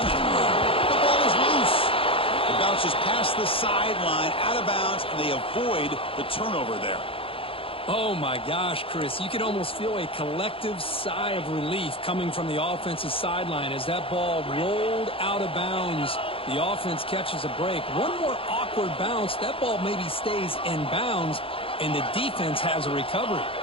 it. The ball is loose. It bounces past the sideline, out of bounds, and they avoid the turnover there. Oh, my gosh, Chris. You can almost feel a collective sigh of relief coming from the offensive sideline as that ball rolled out of bounds. The offense catches a break. One more awkward bounce. That ball maybe stays in bounds, and the defense has a recovery.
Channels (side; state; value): right; late; 0.27 ms